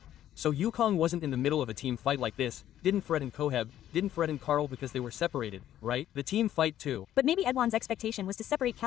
So Yukong wasn't in the middle of a team fight like this, didn't threaten Koheb, didn't threaten Carl because they were separated, right? The team fight too. But maybe Edwan's expectation was to separate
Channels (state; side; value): quieter; right; 11.8 dB